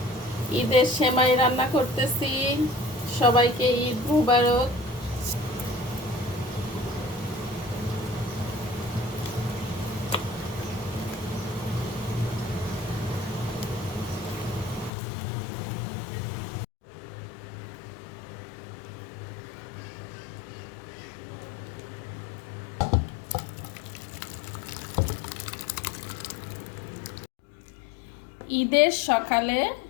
ঈদের সেমাই রান্না করতেছি, সবাইকে ঈদ মুবারক। ঈদের সকালে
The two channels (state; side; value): drops out; right; at 14.9 s